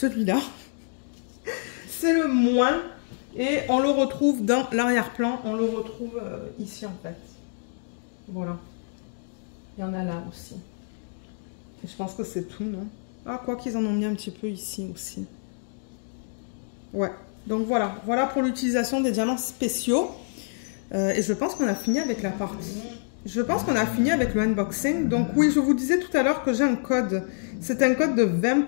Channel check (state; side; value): silent; right; digital silence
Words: c'est le moins. Et on le retrouve dans l'arrière-plan. On le retrouve ici, en fait. Voilà. Il y en a là aussi. Et je pense que c'est tout, non? Ah, quoi qu'ils en ont mis un petit peu ici aussi. Ouais. Donc, voilà. Voilà pour l'utilisation des diamants spéciaux. Et je pense qu'on a fini avec la partie. Je pense qu'on a fini avec le unboxing. Donc, oui, je vous disais tout à l'heure que j'ai un code. C'est un code de